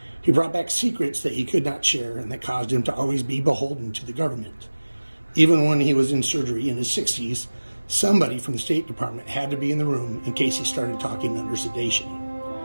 He brought back secrets that he could not share and that caused him to always be beholden to the government. Even when he was in surgery in his 60s, somebody from the State Department had to be in the room in case he started talking under sedation.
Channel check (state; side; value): inverted; both; correlation -1.00